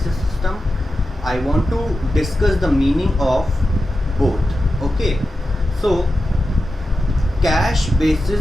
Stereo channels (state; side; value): normal; both; correlation 0.91